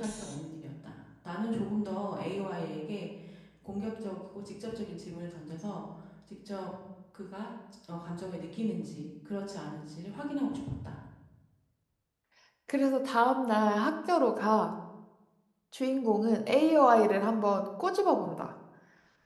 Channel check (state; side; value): identical; both; correlation 1.00